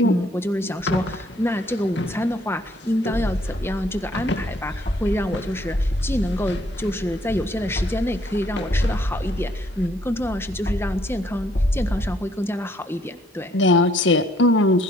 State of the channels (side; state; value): both; normal; correlation 0.65